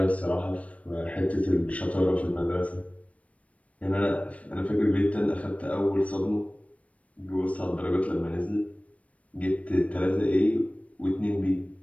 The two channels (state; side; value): late; right; 0.065 ms